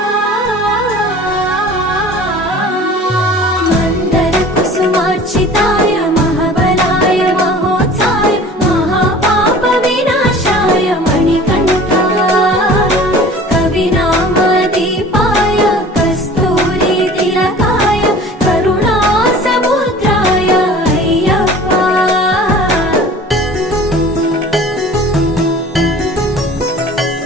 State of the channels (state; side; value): normal; both; correlation 0.44